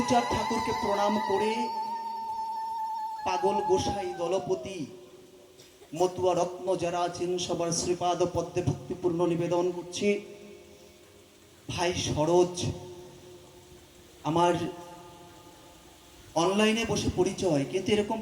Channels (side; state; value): both; identical; correlation 1.00